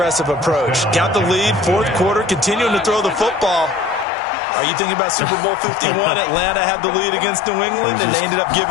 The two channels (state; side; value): drops out; right; at 4.0 s